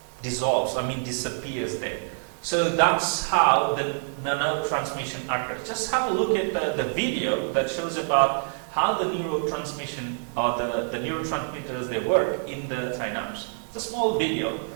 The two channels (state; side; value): silent; left; digital silence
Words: dissolves, disappears there. So that's how the nerve transmission occurs. Just have a look at the video that shows about how the neurotransmission or the neurotransmitters, they work in the synapse. It's a small video.